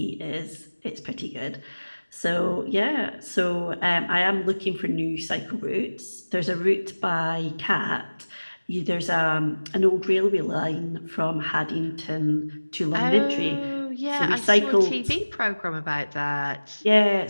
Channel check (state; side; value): inverted; both; correlation -1.00